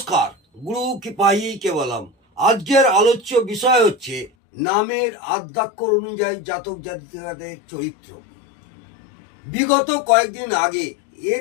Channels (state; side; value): drops out; right; at 4.3 s